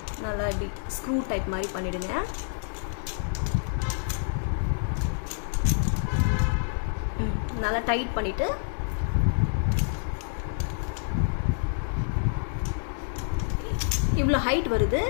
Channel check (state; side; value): silent; right; digital silence